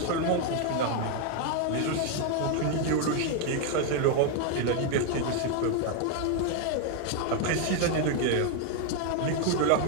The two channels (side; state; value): both; different; correlation 0.00